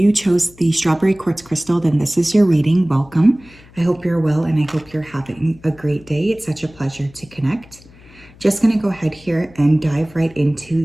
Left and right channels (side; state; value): left; noise; hum, 24 dB below the sound